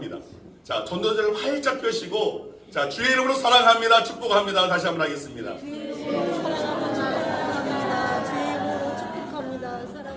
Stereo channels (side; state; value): both; identical; correlation 1.00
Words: 자, 전도지를 활짝 펴시고 자, 주의 이름으로 사랑합니다. 축복합니다. 다시 한번 하겠습니다.